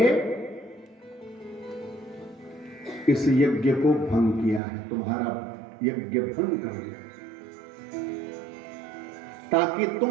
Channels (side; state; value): left; drops out; at 4.6 s